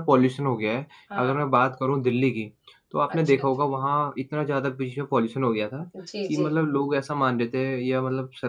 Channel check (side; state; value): both; identical; correlation 1.00